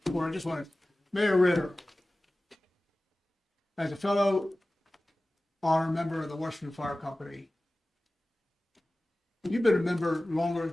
I just want to, Mayor Ritter, as a fellow honor member of the Washington Fire Company, you've been a member longer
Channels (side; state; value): both; normal; correlation 0.97